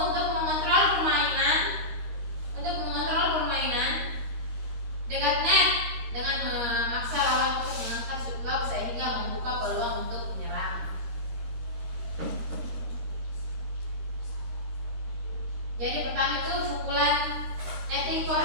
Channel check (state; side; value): late; left; 13 ms